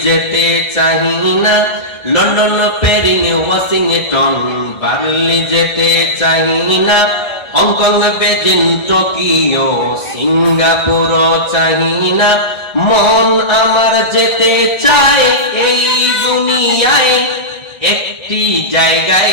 যেতে চাহি না। লন্ডন, প্যারিস, ওয়াশিংটন, বার্লি যেতে চাহি না। হংকং, বেজিং, টোকিও, সিঙ্গাপুর চাহি না। মন আমার যেতে চায় এই দুনিয়ায় একটি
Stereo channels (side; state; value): right; late; 1.5 ms